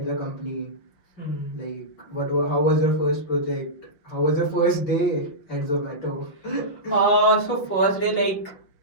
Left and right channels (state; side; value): late; right; 5.8 ms